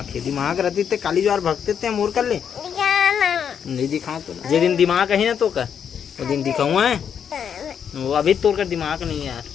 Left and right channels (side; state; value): right; quieter; 7.9 dB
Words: है दिमाग रहती थे काली ज्वार भगते थे मोर कर ले नहीं दिखाओ तो जे दिन दिमाग है ना तो का वो दिन दिखाऊंगा है वो अभी तोड़ कर दिमाग नहीं है यार